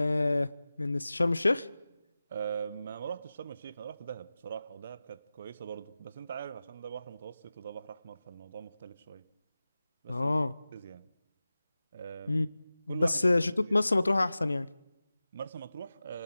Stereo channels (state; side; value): inverted; both; correlation -0.96